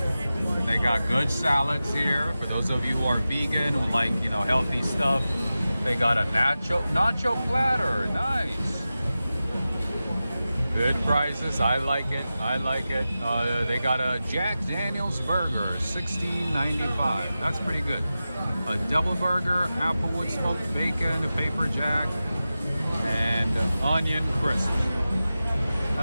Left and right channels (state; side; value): inverted; both; correlation -0.94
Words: They got good salads here. For those of you who are vegan, who like, you know, healthy stuff, they got a nacho platter. Nice. Good prices. I like it. I like it. They got a Jack Daniel's burger, $16.95. That's pretty good. A double burger, applewood smoked bacon, a paper jack, and onion crisp.